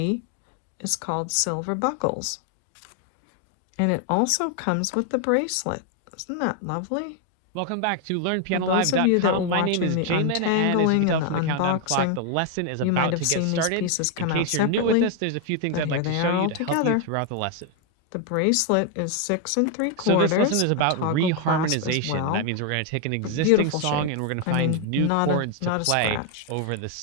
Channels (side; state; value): both; different; correlation 0.01